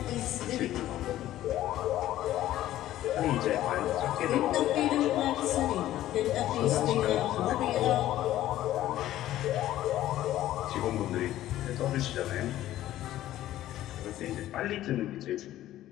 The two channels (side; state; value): right; quieter; 13.8 dB